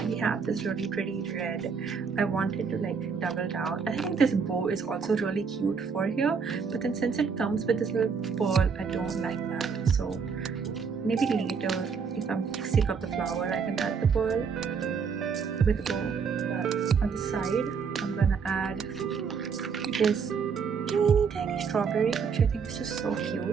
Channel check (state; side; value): quieter; left; 5.8 dB